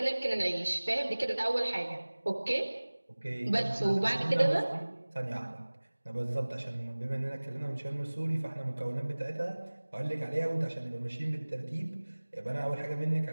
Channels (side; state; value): both; inverted; correlation -1.00